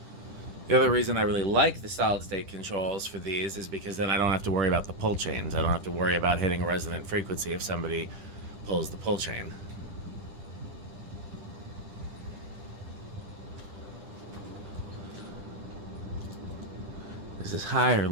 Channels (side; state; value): left; late; 10 ms